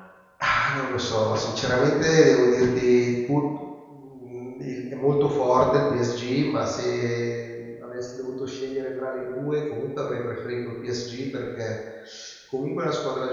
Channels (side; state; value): both; identical; correlation 1.00